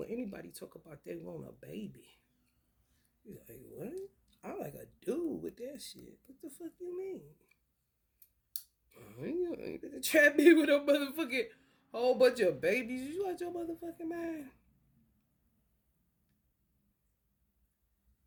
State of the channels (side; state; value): both; identical; correlation 1.00